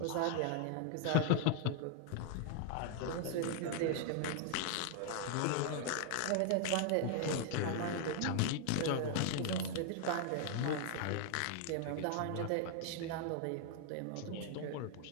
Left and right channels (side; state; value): both; different; correlation 0.00